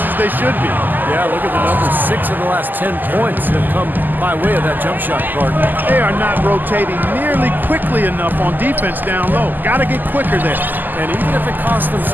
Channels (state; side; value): late; left; 0.087 ms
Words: as they should be. Yeah, look at the numbers. 6 of the last 10 points have come by way of that jump shot, Carter. They are not rotating nearly quickly enough on defense down low. Got to get quicker there. And even if it costs them